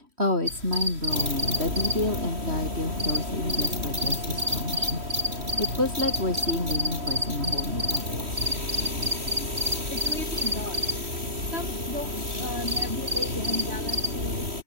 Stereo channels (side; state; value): left; late; 3.1 ms